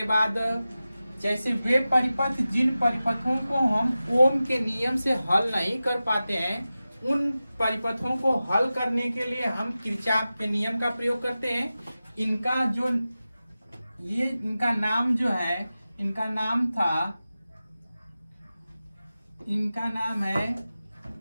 बाद जैसे वे परिपथ जिन परिपथों को हम ओम के नियम से हल नहीं कर पाते हैं, उन परिपथों को हल करने के लिए हम किरचॉफ के नियम का प्रयोग करते हैं। इनका नाम जो है, इनका नाम है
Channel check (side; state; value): both; inverted; correlation -0.95